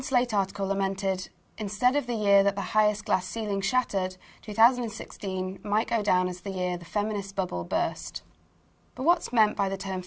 Slate article lamented, instead of the year that the highest glass ceiling shattered, 2016 might go down as the year the feminist bubble burst. But what's meant by the term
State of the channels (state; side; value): identical; both; correlation 1.00